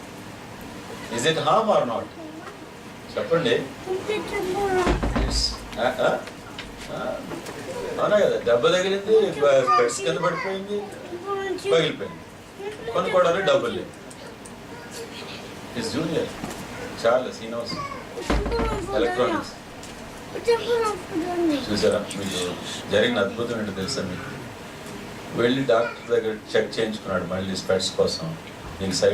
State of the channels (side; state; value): both; identical; correlation 1.00